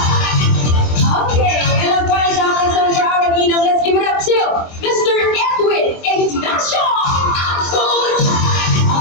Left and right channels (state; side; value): late; right; 23 ms